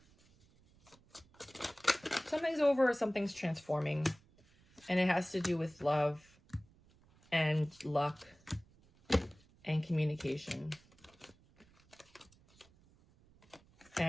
Something's over or something's transforming. And it has to do with love and luck and communication.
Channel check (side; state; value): right; noise; rumble, 29 dB below the sound